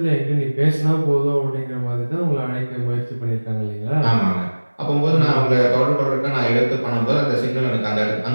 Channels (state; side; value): inverted; both; correlation -1.00